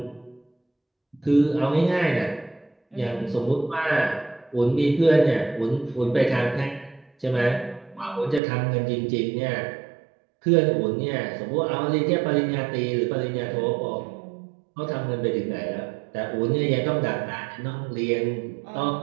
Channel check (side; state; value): left; drops out; at 8.4 s